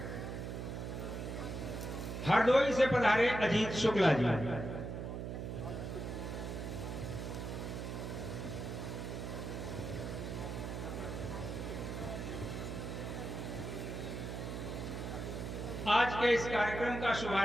हरदोई से पधारे अजीत शुक्ला जी, आज के इस कार्यक्रम का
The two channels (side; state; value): right; noise; hum, 5 dB below the sound